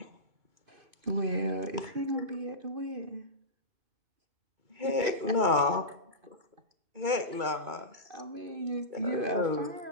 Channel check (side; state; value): left; late; 2.3 ms